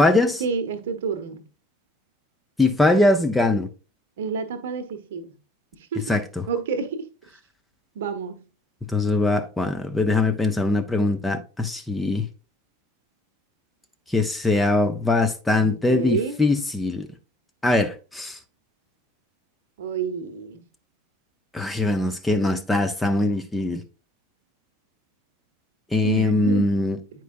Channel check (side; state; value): both; normal; correlation 0.61